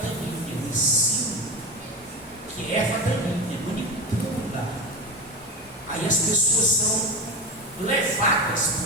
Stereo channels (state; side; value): normal; both; correlation 0.21